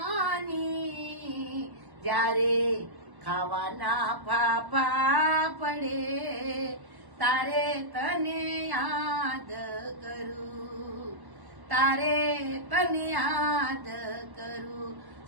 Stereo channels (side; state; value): left; late; 1.1 ms